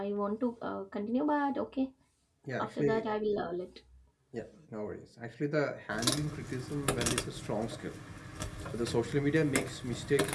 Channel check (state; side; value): identical; both; correlation 1.00